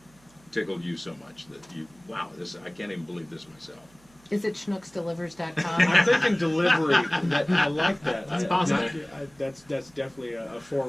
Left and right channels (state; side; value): noise; right; hum, 29 dB below the sound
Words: tickled you so much that wow, I can't even believe this myself. Is it schnooksdelivers.com? I'm thinking delivery. I like that. That's possible. That's definitely a